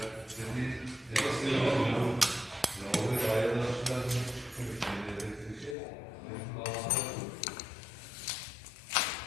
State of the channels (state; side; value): drops out; right; at 5.8 s